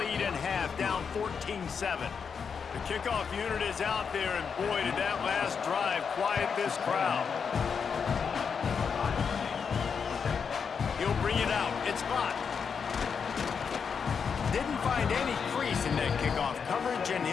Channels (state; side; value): quieter; right; 6.3 dB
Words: in half, down 14-7. The kickoff unit is out there, and boy, did that last drive quiet this crowd. He'll bring it out. It's blocked. Didn't find any crease in that kickoff coverage, and